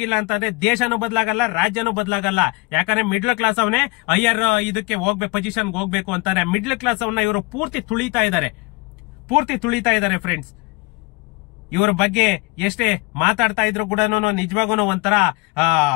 ಅಂತಂದ್ರೆ ದೇಶನೂ ಬದಲಾಗಲ್ಲ, ರಾಜ್ಯನೂ ಬದಲಾಗಲ್ಲ. ಯಾಕಂದ್ರೆ ಮಿಡ್ಲ್ ಕ್ಲಾಸ್ ಅವನೇ ಹೈಯರ್ ಇದಕ್ಕೆ ಹೋಗ್ಬೇಕು, ಪೊಸಿಷನ್ಗೆ ಹೋಗ್ಬೇಕು ಅಂತಾರೆ. ಮಿಡ್ಲ್ ಕ್ಲಾಸ್ ಅವನ್ನ ಇವರು ಪೂರ್ತಿ ತುಳಿತಾ ಇದ್ದಾರೆ ಫ್ರೆಂಡ್ಸ್. ಇವ್ರ ಬಗ್ಗೆ ಎಷ್ಟೇ ಮಾತಾಡ್ತಾ ಇದ್ರು ಕೂಡ ನಿಜವಾಗೂ ಒಂಥರ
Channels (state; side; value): quieter; right; 25.8 dB